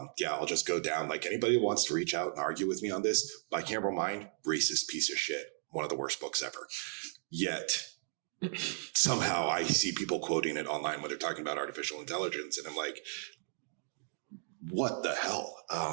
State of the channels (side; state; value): left; silent; digital silence